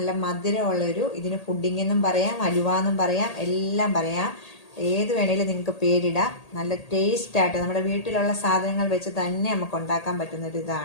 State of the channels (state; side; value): late; right; 1.8 ms